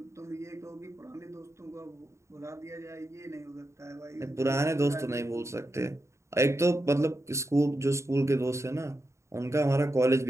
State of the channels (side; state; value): left; late; 0.14 ms